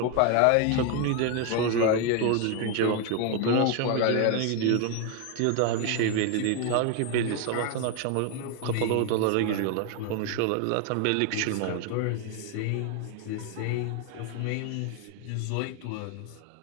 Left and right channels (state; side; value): different; both; correlation 0.01